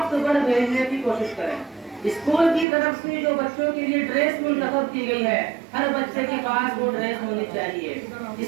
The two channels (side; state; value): left; drops out; at 2.7 s